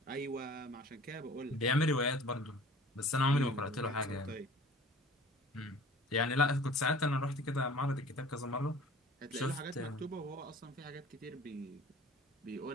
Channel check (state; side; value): normal; both; correlation 0.46